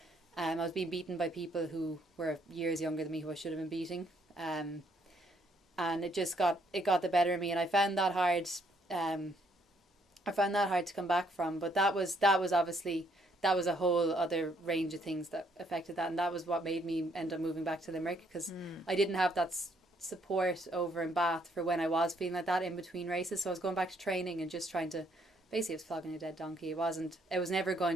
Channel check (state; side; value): normal; both; correlation 0.69